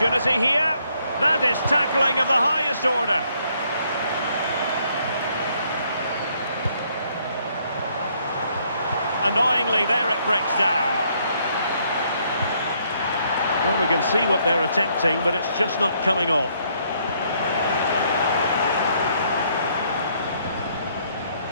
here. That is tackling of the highest order. Annoyingly, there it breaks down. Well, we can see what they're attempting, but it's just not coming off.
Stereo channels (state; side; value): inverted; both; correlation -0.69